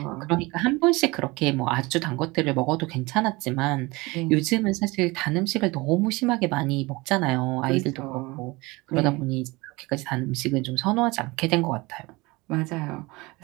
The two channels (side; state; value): left; quieter; 23.4 dB